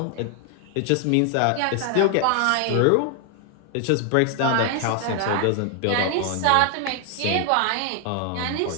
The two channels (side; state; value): both; different; correlation 0.00